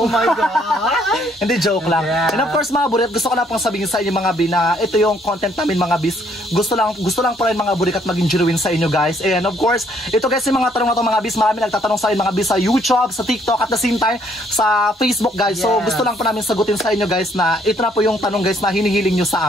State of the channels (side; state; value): both; normal; correlation 0.67